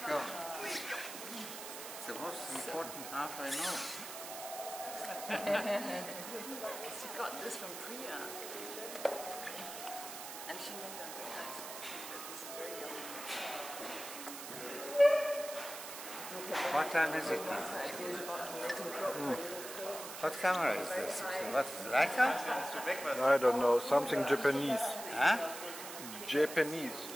God. It's the most important half I know. She got this from Priya. And she made them very nice. This is very yummy. What time is it now? What camera is this? What is it, Leica? I don't know, something Japanese. Huh? Japanese,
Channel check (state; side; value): noise; right; hiss, 9 dB below the sound